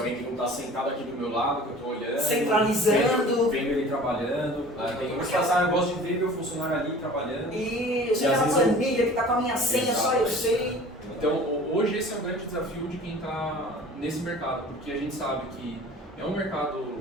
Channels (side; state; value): both; normal; correlation 0.44